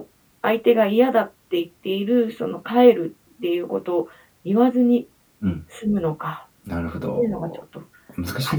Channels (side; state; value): both; identical; correlation 1.00